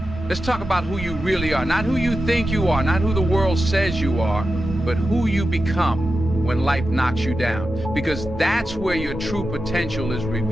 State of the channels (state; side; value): normal; both; correlation 0.90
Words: Let's talk about who you really are. Not who you think you are, not who the world says you are, but who you become when life knocks you down. Because that's where your true potential is